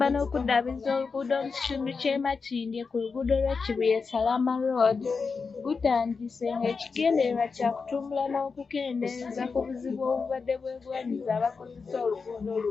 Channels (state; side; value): quieter; right; 4.9 dB